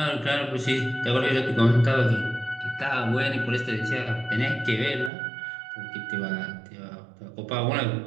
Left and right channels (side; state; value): left; drops out; at 5.1 s